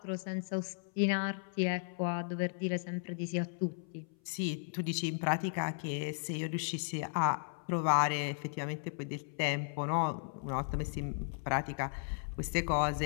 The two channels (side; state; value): right; silent; 54 dB below the other